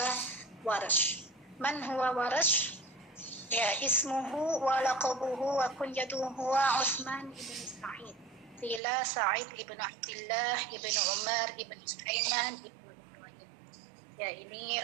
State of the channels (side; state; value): left; drops out; at 8.8 s